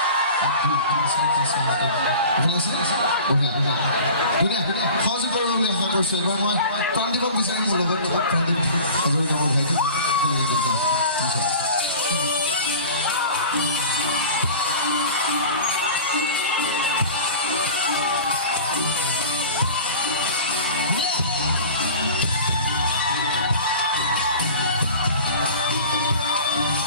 সহযোগ কৰিব বুলি আশা কৰিছোঁ এবাৰ মই প্ৰাণদীপক বিচাৰিম মোৰ লগত প্ৰাণদীপ ভাইটি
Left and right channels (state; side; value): inverted; both; correlation -0.38